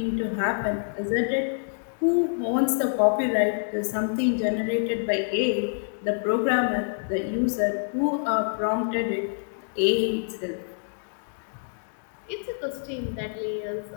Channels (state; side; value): silent; right; digital silence